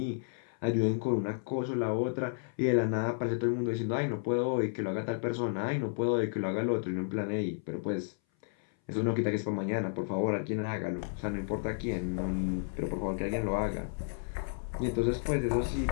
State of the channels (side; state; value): right; silent; 56 dB below the other